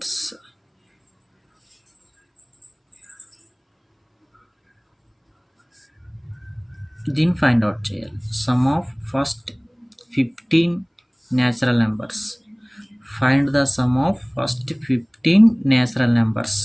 దీన్ని ఫైండ్ అవుట్ చేయాలి. Sum of first 15 natural numbers. Find the sum of first 15 natural numbers.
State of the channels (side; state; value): both; identical; correlation 1.00